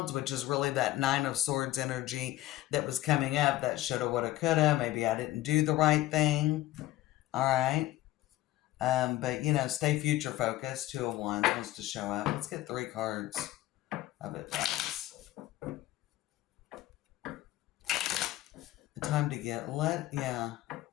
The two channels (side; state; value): right; quieter; 15.8 dB